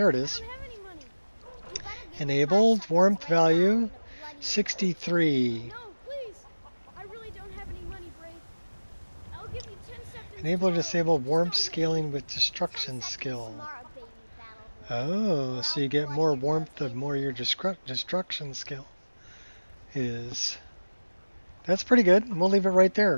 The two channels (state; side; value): inverted; both; correlation -1.00